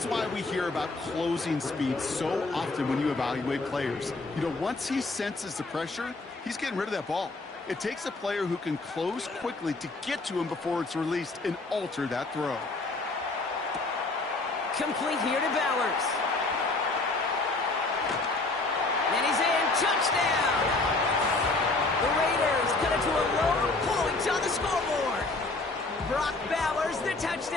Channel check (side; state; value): right; quieter; 3.3 dB